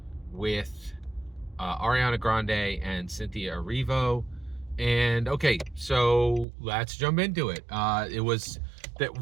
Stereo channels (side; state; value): left; drops out; at 6.5 s